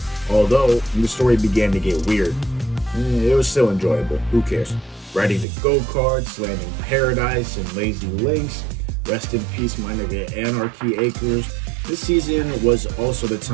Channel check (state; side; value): drops out; left; at 5.5 s